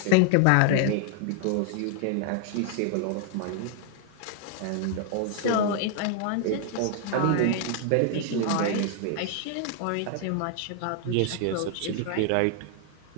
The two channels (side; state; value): both; different; correlation 0.00